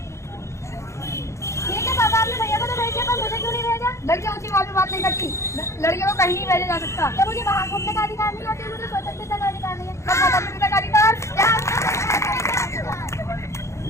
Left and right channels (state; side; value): late; right; 0.14 ms